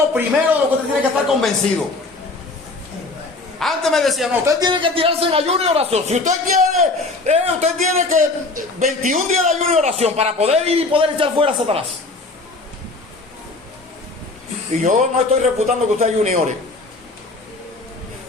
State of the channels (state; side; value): quieter; right; 3.3 dB